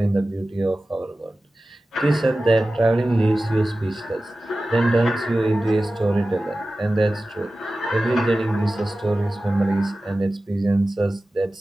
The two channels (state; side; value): normal; both; correlation 0.95